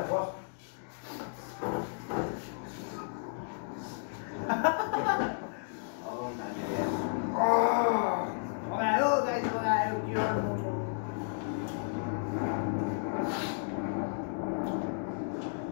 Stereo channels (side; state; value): right; silent; digital silence